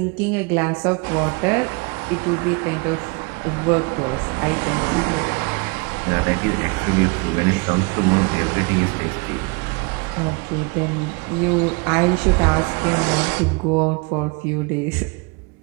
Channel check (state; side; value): quieter; left; 30.1 dB